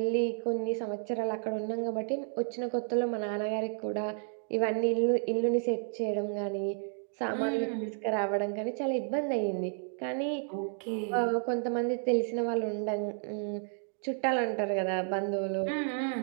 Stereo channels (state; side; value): silent; left; 57 dB below the other